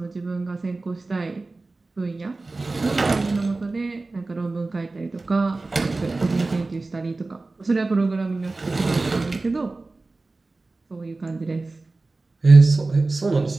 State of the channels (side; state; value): left; quieter; 3.4 dB